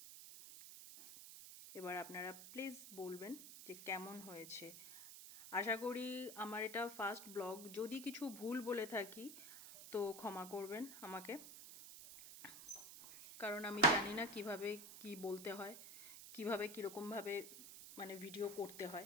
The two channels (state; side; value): noise; right; hiss, 12 dB below the sound